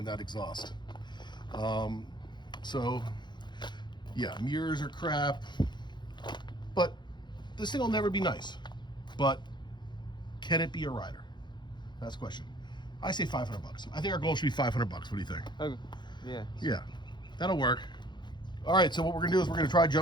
that exhaust. So yeah, mirrors are crap, but this thing will never be nice. But can it be a rider? That's the question. I say $500. I think our goal should be $500. What do you think? Okay. Yeah. Yeah, that'll work. All right, so what we're gonna do is we're gonna try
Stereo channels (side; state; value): right; late; 0.22 ms